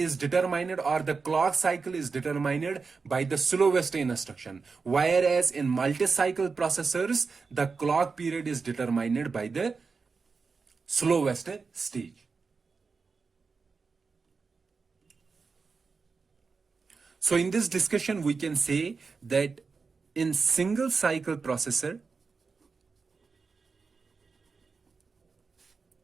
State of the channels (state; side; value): quieter; left; 4.8 dB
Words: determined, or the clock cycle is determined by the slowest instruction, whereas in multi-cycle processors, the clock period is determined by the slowest stage. So in this discussion, we can say that in single cycle processor,